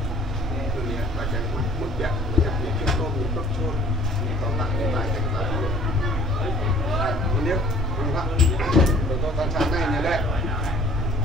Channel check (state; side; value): normal; both; correlation 0.54